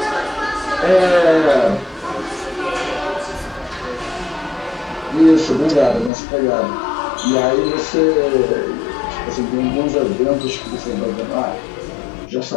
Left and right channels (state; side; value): drops out; right; at 6.1 s